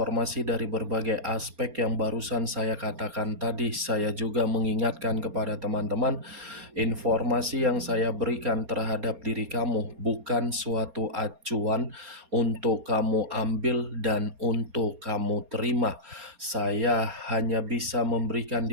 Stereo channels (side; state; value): left; late; 4.3 ms